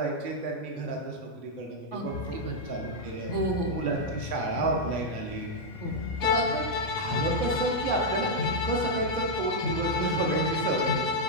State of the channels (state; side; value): late; right; 3.6 ms